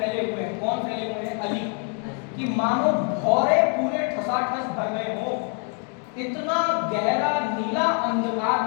हुए हैं, कौन फैले हुए हैं, अली, कि मानो भौरे पूरे ठसाठस भर गए हो, इतना गहरा नीला अंधकार।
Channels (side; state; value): right; quieter; 39.4 dB